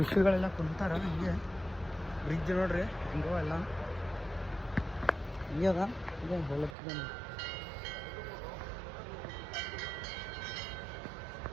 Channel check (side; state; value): left; drops out; at 6.8 s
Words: ಕುಂತಾರ ಹಂಗೆ. ಬ್ರಿಡ್ಜ್ ನೋಡ್ರಿ ಹಿಂಗೋ ಎಲ್ಲ ಹಿಂಗೆ ಅದ. ಇದೆ ಹೋಲತ್ತಿದೆ